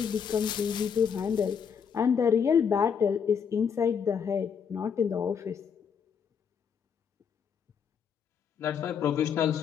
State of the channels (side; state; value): right; quieter; 7.1 dB